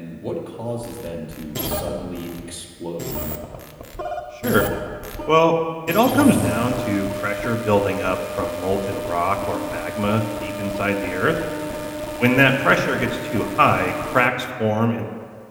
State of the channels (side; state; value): both; identical; correlation 1.00